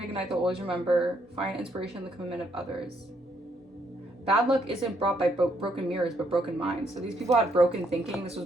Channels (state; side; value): normal; both; correlation 0.72